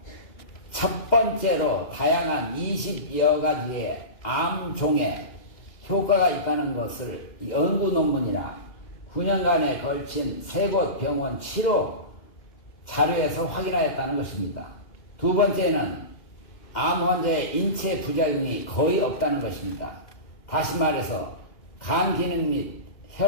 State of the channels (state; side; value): late; right; 2.1 ms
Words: 첫 번째로 다양한 20여 가지의 암종에 효과가 있다는 것을 연구 논문이나 9년간에 걸친 3곳 병원 치료 자료에서 확인하였다는 것입니다. 두 번째는 암 환자의 인체 부작용이 거의 없다는 것입니다. 다시 말해서 간 기능 및